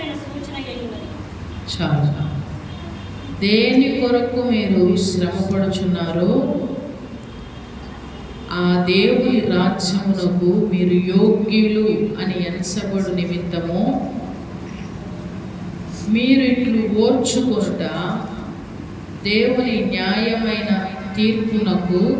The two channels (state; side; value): identical; both; correlation 1.00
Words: సూచన అయినది. చాలా. దేని కొరకు మీరు శ్రమపడుచున్నారో ఆ దేవుని రాజ్యమునకు మీరు యోగ్యులు అని ఎంచబడు నిమిత్తము మీరు ఇట్లు ఓర్చుకొనుట దేవుని న్యాయమైన తీర్పునకు